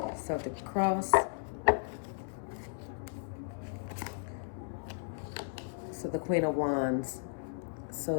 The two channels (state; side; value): silent; right; 54 dB below the other